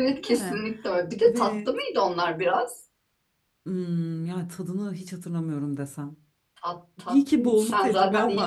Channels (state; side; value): identical; both; correlation 1.00